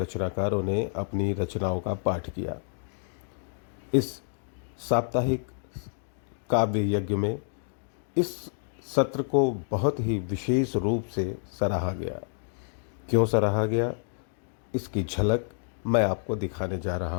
ने अपनी रचनाओं का पाठ किया। इस साप्ताहिक काव्य यज्ञ में इस सत्र को बहुत ही विशेष रूप से सराहा गया। क्यों सराहा गया, इसकी झलक मैं आपको दिखाने जा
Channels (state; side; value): silent; right; 59 dB below the other